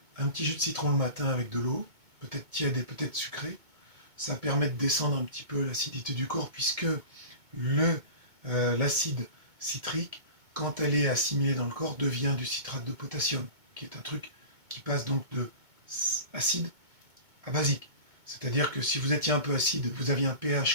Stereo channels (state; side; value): late; left; 2.2 ms